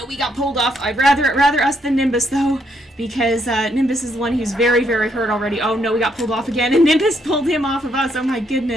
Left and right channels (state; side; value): normal; both; correlation 0.74